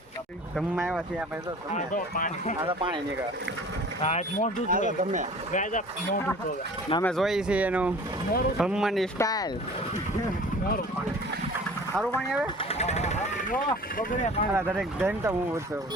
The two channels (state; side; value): normal; both; correlation 0.44